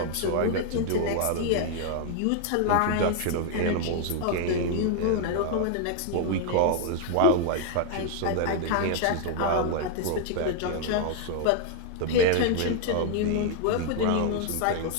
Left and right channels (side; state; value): both; different; correlation 0.00